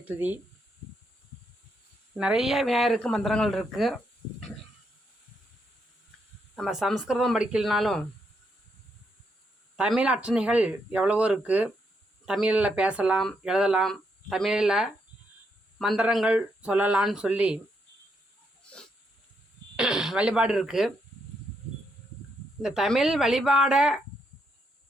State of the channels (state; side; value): normal; both; correlation 0.78